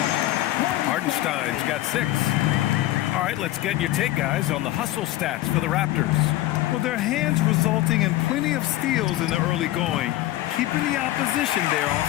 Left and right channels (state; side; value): quieter; right; 15.7 dB